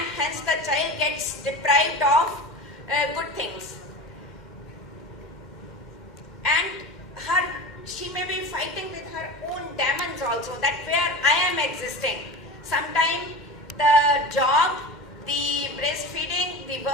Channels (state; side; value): normal; both; correlation 0.30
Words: hence the child gets deprived of good things. And she may be fighting with her own demons also, that where I am existing. Sometimes the job, the breastfeeding, the